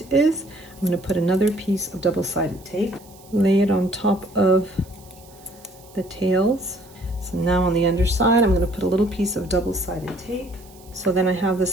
is. I'm going to put another piece of double-sided tape, lay it on top of the tails. So now on the underside, I'm going to put a little piece of double-sided tape. So then I have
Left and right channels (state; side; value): noise; right; hiss, 25 dB below the sound